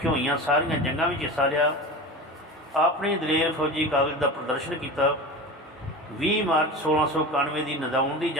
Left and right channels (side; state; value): both; normal; correlation 0.30